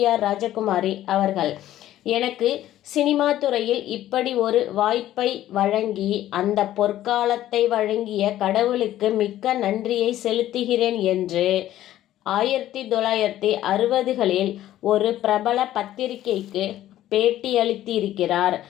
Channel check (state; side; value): quieter; right; 13.3 dB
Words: ராஜகுமாரி அவர்கள். எனக்கு சினிமா துறையில் இப்படி ஒரு வாய்ப்பை வழங்கி அந்த பொற்காலத்தை வழங்கிய கடவுளுக்கு மிக்க நன்றியை செலுத்துகிறேன் என்று 1960களில் ஒரு பிரபல பத்திரிகைக்கு பேட்டியளித்திருக்கிறார்